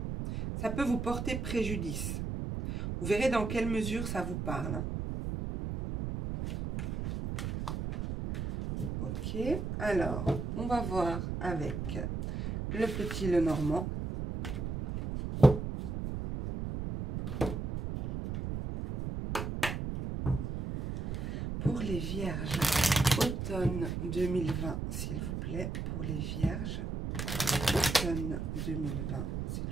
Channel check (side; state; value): right; noise; rumble, 3 dB below the sound